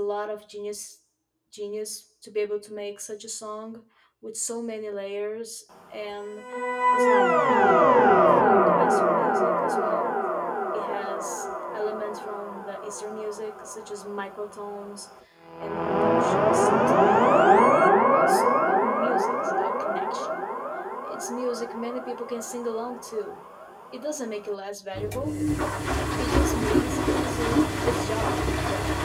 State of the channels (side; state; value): both; identical; correlation 1.00